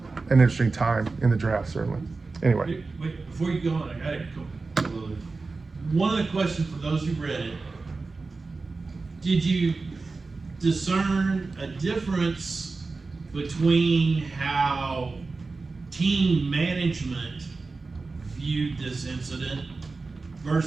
an interesting time in the draft, certainly. Anyway. Wait, before you go on, I got a couple of. One of the questions for those who read it, did you discern a difference between how team management viewed this incident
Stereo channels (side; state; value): left; quieter; 3.9 dB